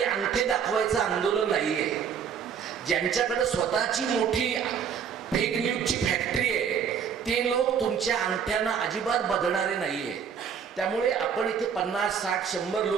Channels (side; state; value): left; quieter; 7.2 dB